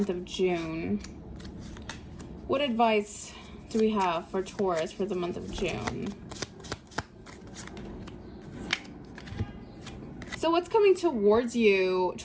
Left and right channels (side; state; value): both; identical; correlation 1.00